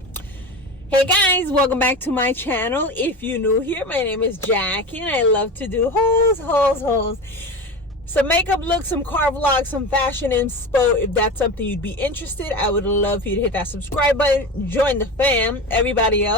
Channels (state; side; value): normal; both; correlation 0.27